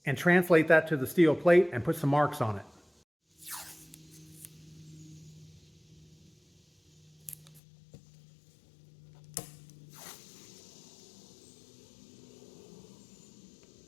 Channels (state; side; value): drops out; right; at 7.6 s